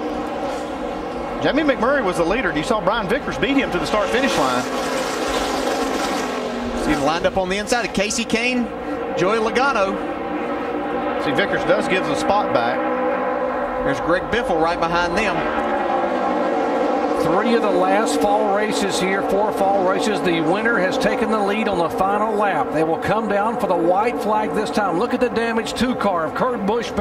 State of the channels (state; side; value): identical; both; correlation 1.00